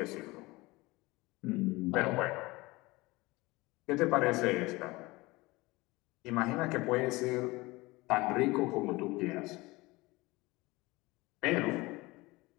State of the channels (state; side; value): quieter; right; 21.9 dB